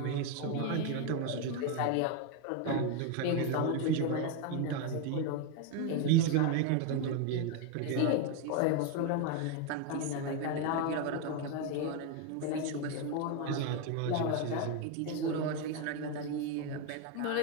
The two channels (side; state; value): both; different; correlation 0.02